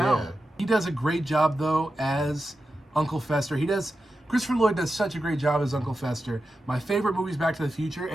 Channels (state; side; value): normal; both; correlation 0.90